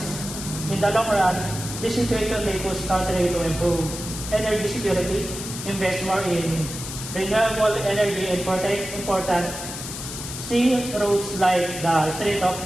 In the long run, this situation may push countries to improve energy security, invest more in renewable energy, and protect important sea routes like the Strait of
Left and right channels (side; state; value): left; noise; hiss, 8 dB below the sound